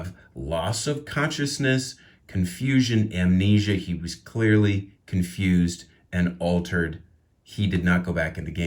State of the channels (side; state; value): both; identical; correlation 1.00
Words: loss of consciousness, confusion, amnesia. He was clearly confused and altered. He did not go back in the